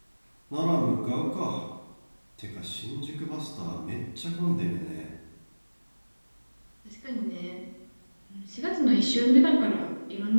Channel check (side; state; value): both; inverted; correlation -1.00